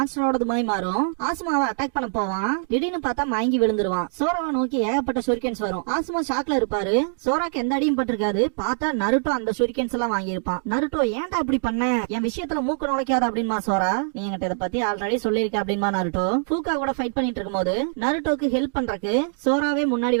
மாதிரி மாறும். ஆசுமாவை அட்டாக் பண்ண போவான். திடீர்னு பார்த்தா மயங்கி விழுந்துருவான். சோராவை நோக்கி ஏகப்பட்ட ஷூரிகன்ஸ் வரும். ஆசுமா ஷாக்ல இருப்பாரு. சோராக்கு எந்த அடியும் பட்டிருக்காது. பார்த்தா நருட்டோ அந்த ஷூரிகன்ஸ் எல்லாம் வாங்கியிருப்பான். நருட்டோ ஏன்டா இப்படி பண்ண, என் விஷயத்துல மூக்கு நுழைக்காத அப்படின்மா சோரா. இத பத்தி ஆல்ரெடி சொல்லிருக்க அப்படின்பா நருட்டோ. ஃபூகா கூட ஃபைட் பண்ணிட்டு இருக்கும்போது நருட்டோக்கு ஹெல்ப் பண்றதுக்கு சோராவே முன்னாடி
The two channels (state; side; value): silent; left; 63 dB below the other